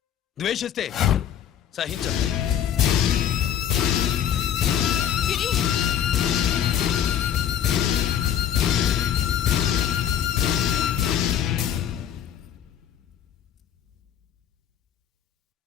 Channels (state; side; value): quieter; right; 9.8 dB